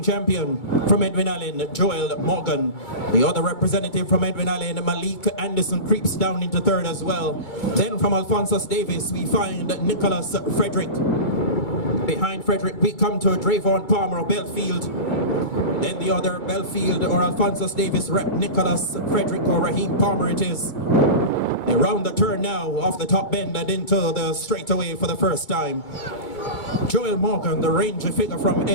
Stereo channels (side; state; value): right; late; 2.2 ms